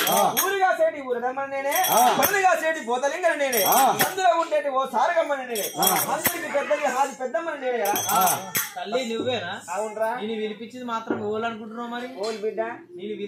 ఊరుగా సేటి ఊరదమ్మని నేనే, పనులుగా సేటి పోతలింగని నేనే, అందులో ఉండేటి ఓ సారగమ్మని నేనే, అందరికి పెద్దది హాది పెద్దమ్మని నేనే కదా. తల్లి నువ్వేనా? అవునరా. నేను వినిపించింది మాత్రం ఓలు అనుకుంటున్నావు. మరి ఓలు బిడ్డ, నేను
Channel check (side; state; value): both; identical; correlation 1.00